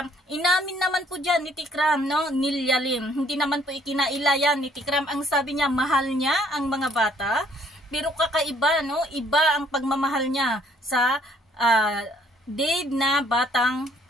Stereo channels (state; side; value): normal; both; correlation 0.63